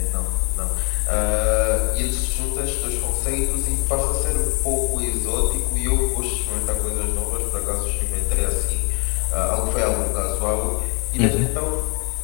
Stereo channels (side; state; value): right; quieter; 32.8 dB